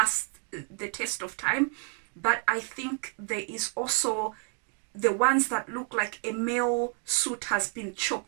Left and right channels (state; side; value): quieter; left; 35.7 dB